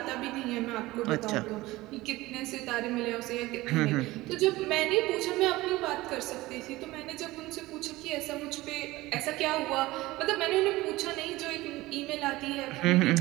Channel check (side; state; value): left; quieter; 19.0 dB